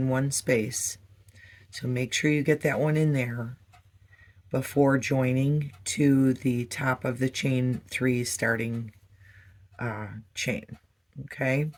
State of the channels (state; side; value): identical; both; correlation 1.00